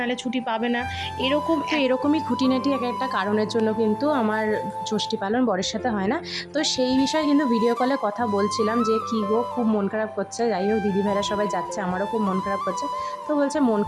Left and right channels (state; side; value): identical; both; correlation 1.00